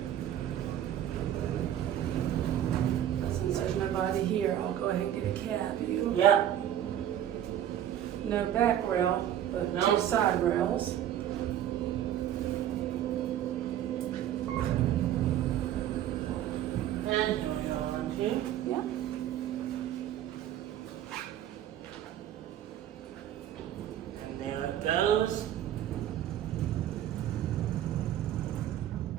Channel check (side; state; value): left; quieter; 11.2 dB